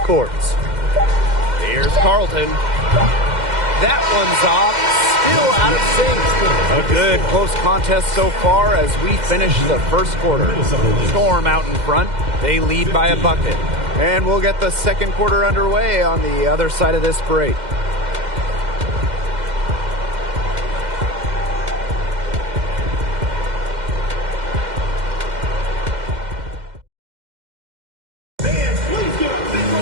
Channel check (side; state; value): left; late; 2.1 ms